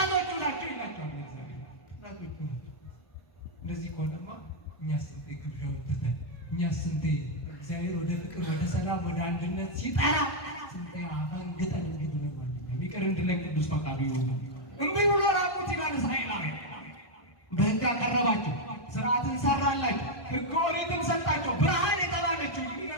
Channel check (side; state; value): right; late; 1.5 ms